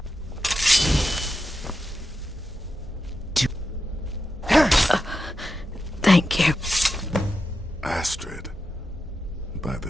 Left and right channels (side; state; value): both; normal; correlation 0.89